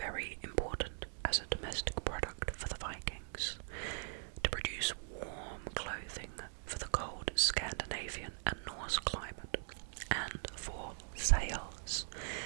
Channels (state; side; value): silent; left; digital silence